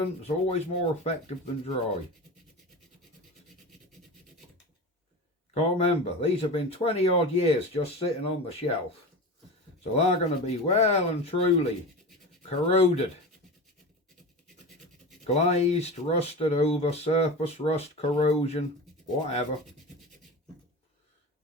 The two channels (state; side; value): normal; both; correlation 0.29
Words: is always more effective than dry. Can't remember, these have been 20 odd years just sitting on the shelf, so they're going to be well and truly corroded, glazed, rusted over, surface rust, corrosion, whatever.